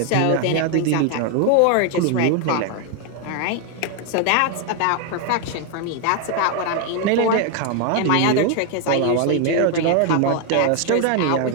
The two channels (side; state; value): both; different; correlation 0.01